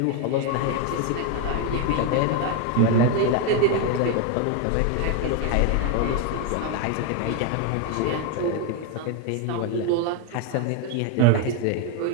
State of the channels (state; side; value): different; both; correlation 0.01